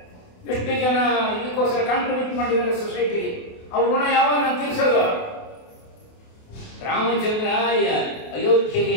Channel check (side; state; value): right; late; 28 ms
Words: ಎಷ್ಟು ಜನ ಇದಕ್ಕೋಸ್ಕರ ಕಾಂಟ್ರಿಬ್ಯೂಟ್ ಮಾಡಿದ್ದಾರೆ ಸೊಸೈಟಿಗೆ. ಅವ್ರ ಋಣ ಯಾವಾಗ ನಾನು ತೀರಿಸೋದು? ರಾಮಚಂದ್ರ ಅಯೋಧ್ಯೆಗೆ